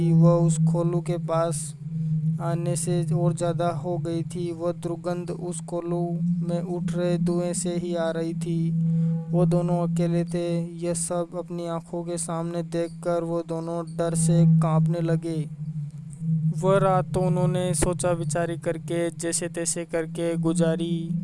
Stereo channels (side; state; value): both; identical; correlation 1.00